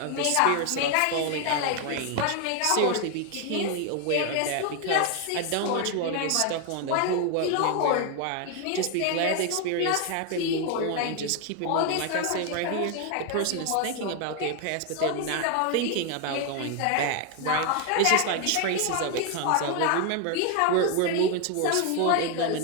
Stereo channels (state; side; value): different; both; correlation 0.01